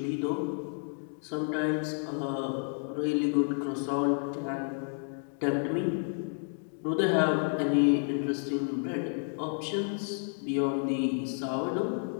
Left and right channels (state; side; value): silent; right; 57 dB below the other